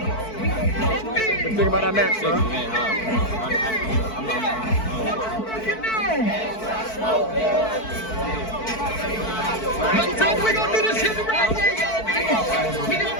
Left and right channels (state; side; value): late; right; 4.5 ms